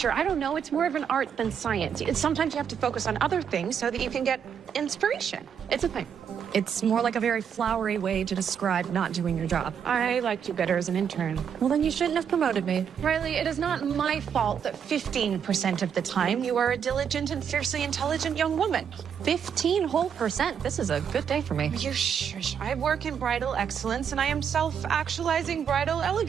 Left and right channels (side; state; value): left; quieter; 7.7 dB